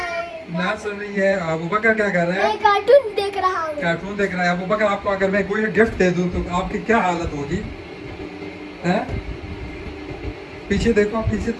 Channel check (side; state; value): both; identical; correlation 1.00